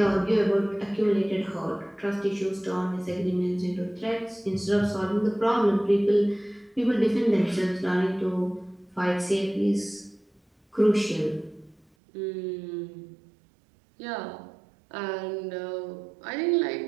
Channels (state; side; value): drops out; left; at 11.8 s